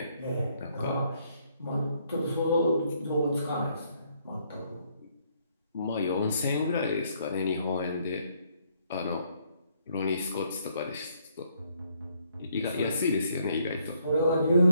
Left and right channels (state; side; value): inverted; both; correlation -0.70